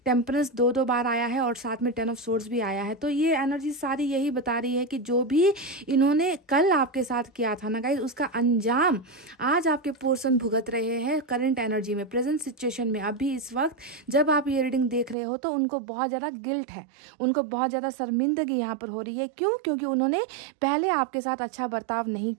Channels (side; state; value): left; drops out; at 15.2 s